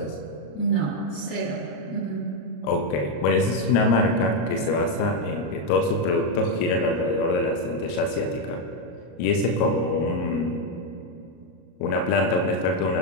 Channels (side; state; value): right; late; 34 ms